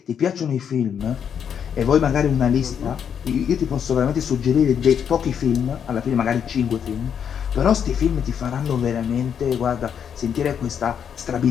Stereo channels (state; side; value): quieter; right; 8.0 dB